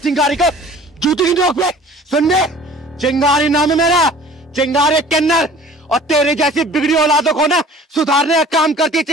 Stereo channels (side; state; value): both; normal; correlation 0.48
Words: को? जूती की नोक पे? सुनने, चिंगारी नाम है मेरा, चिंगारी किन्नर। और तेरे जैसी बिगड़ी औलादों को ना सुधारने का काम करती है